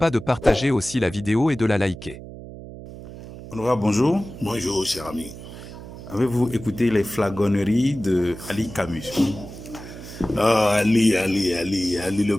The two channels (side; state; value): right; noise; hum, 14 dB below the sound